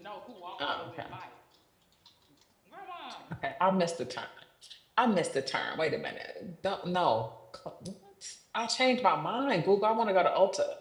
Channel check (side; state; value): both; identical; correlation 1.00